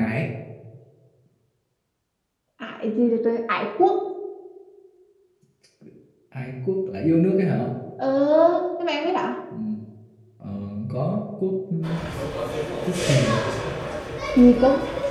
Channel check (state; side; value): identical; both; correlation 1.00